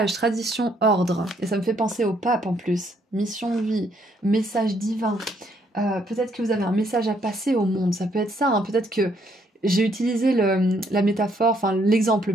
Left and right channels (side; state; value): both; normal; correlation 0.70